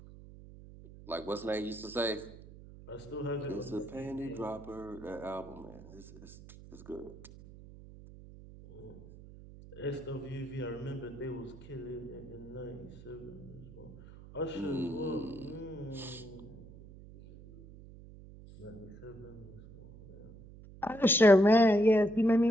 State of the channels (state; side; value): noise; right; hum, 18 dB below the sound